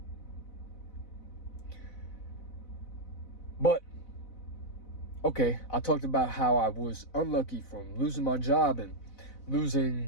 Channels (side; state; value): right; late; 4.0 ms